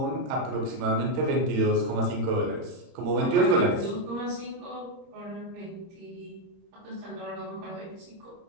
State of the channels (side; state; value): left; late; 31 ms